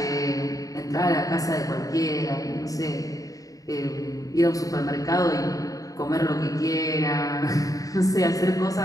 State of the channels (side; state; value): right; late; 0.17 ms